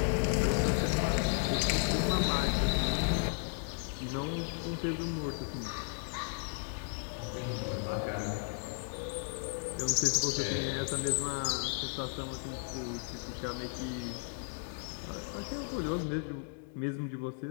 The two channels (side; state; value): right; silent; 55 dB below the other